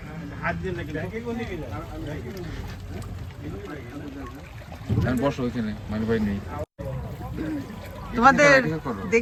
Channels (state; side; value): identical; both; correlation 1.00